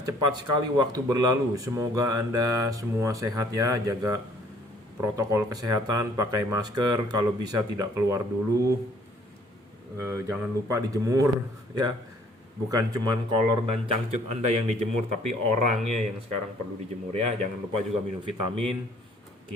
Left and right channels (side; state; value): both; normal; correlation 0.59